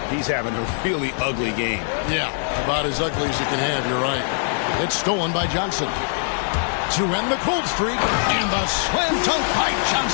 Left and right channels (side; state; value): right; silent; 64 dB below the other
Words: He's having a really ugly game. Yeah, about as ugly as you can have, you're right. It's stolen by Johnson. To end the cold streak, and the slam dunk by